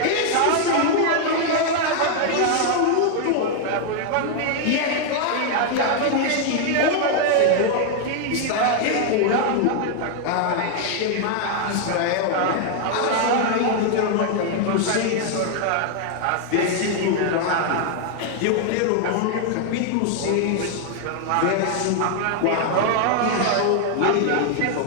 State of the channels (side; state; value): both; different; correlation 0.00